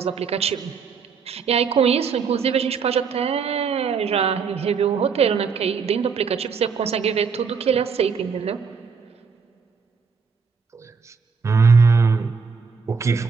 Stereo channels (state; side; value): quieter; left; 5.6 dB